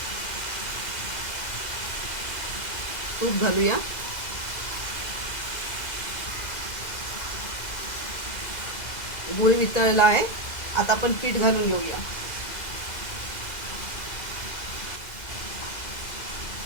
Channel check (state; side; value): late; right; 2.0 ms